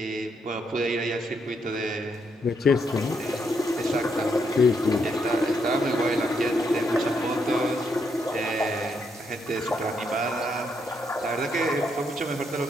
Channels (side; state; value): both; normal; correlation 0.77